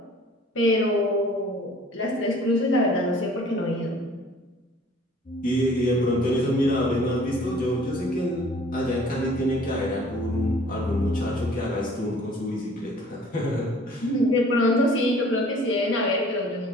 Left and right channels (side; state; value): both; normal; correlation 0.52